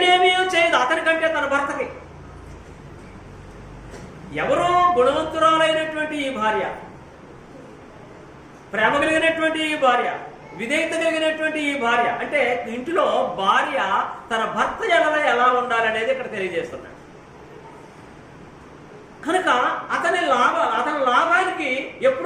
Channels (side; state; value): both; identical; correlation 1.00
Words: చేయదు. అతనికంటే తన భర్తకి. ఎవరో గుణవంతురాలైనటువంటి ఈ భార్య, ప్రేమ కలిగినటువంటి ఈ భార్య, విధేయత కలిగినటువంటి ఈ భార్య, అంటే ఇంటిలో భార్య తన భర్త ఎలా ఉండాలనేది ఇక్కడ తెలియజేస్తున్నాడు. కనుక అతని లాభానికి